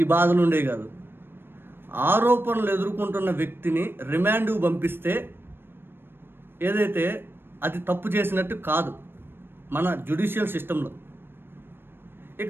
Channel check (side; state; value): left; late; 0.10 ms